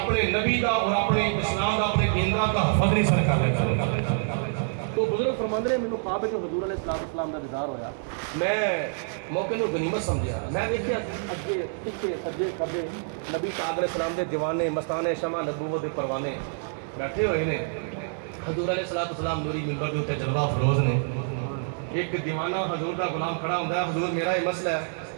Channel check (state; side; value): silent; left; 60 dB below the other